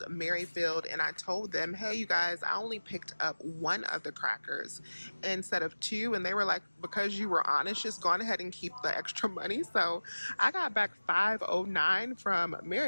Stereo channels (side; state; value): both; inverted; correlation -1.00